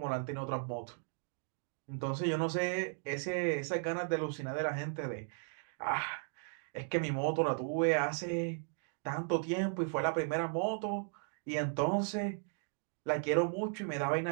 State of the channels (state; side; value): silent; left; 54 dB below the other